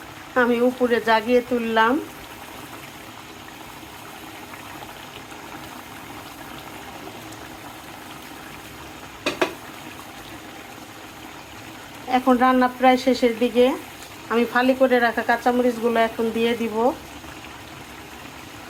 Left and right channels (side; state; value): both; identical; correlation 1.00